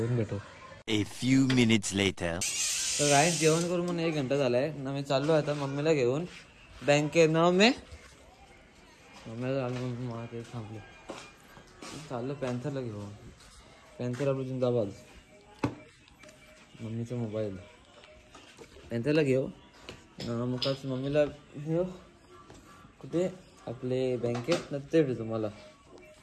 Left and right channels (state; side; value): identical; both; correlation 1.00